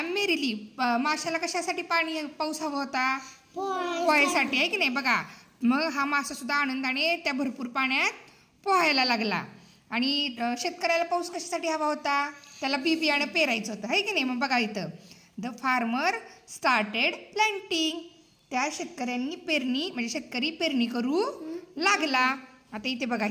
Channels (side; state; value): both; identical; correlation 1.00